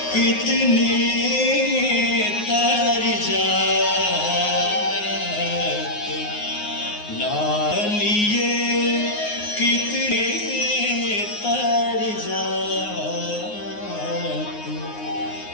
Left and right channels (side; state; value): right; late; 9.6 ms